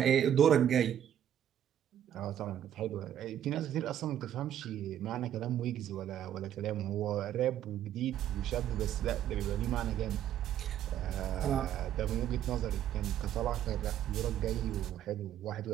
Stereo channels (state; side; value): quieter; left; 10.7 dB